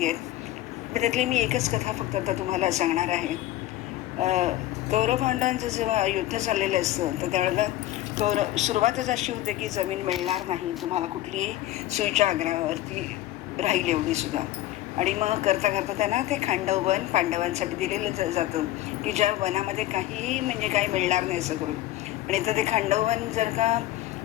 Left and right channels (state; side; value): quieter; right; 15.1 dB